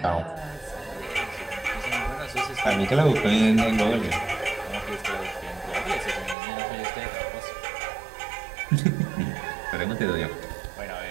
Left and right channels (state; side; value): drops out; left; at 6.4 s